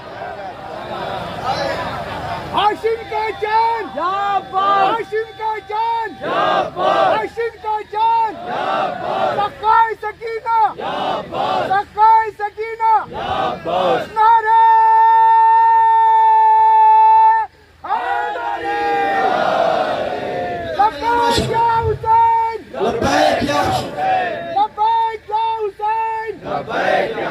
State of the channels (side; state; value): both; identical; correlation 1.00